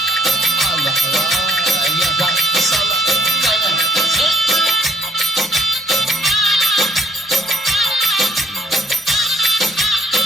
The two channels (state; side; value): normal; both; correlation 0.62